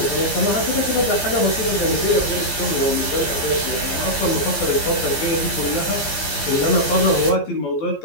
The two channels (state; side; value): late; right; 15 ms